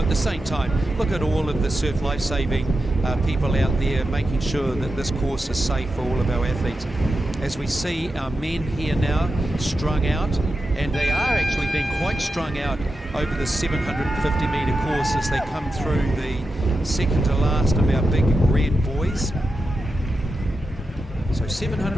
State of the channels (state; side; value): normal; both; correlation 0.90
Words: the same time, look at all of the surf life-saving people out there making sure that this course is safe for all of our athletes. As we see our men here now strung out, and they are actually being quite strung out over the 750 metre course as they come through the second to last of our big red boys. So